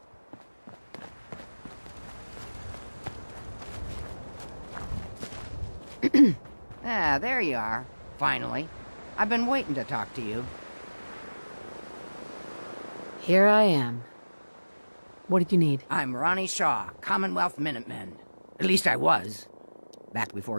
Ah, there you are. Finally. I've been waiting to talk to you. Here I am. What did you need? I'm Ronnie Shaw, Commonwealth Minutemen. At least I was. Back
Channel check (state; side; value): inverted; both; correlation -1.00